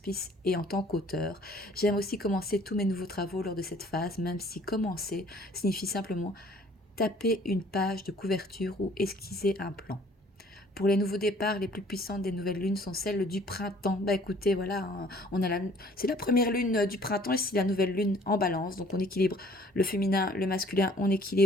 et en tant qu'auteur. J'aime aussi commencer tous mes nouveaux travaux lors de cette phase, même si commencer signifie simplement taper une page de couverture ou esquisser un plan. Pour les nouveaux départs, les plus puissantes des nouvelles lunes sont celles du printemps. Bah écoutez, voilà, hein, c'est la première lune du printemps et c'est la nouvelle lune en balance. Donc on équilibre le féminin, le masculin, on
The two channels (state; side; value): normal; both; correlation 0.56